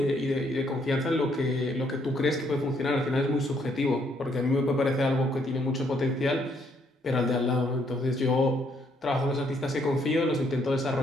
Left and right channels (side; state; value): both; normal; correlation 0.70